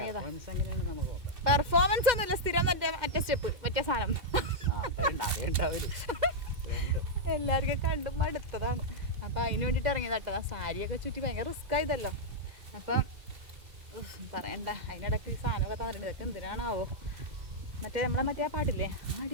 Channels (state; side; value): late; left; 2.1 ms